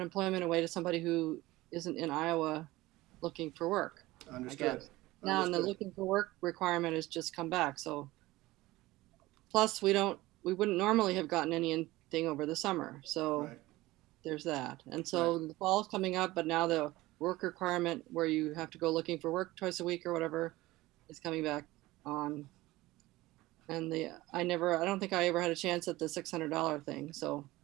away to somebody who isn't in Iowa looking for work. Understood. Now, and the looking for work requirement has just come back. So, plus we wouldn't normally have gotten anything over the summer. So Right. There's that. And so the fall's coming up, but now the work requirement where you have to go looking for work twice a week or whatever is coming back on. And I don't think I ever had a chance at the $600 thing. So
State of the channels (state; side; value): quieter; left; 18.7 dB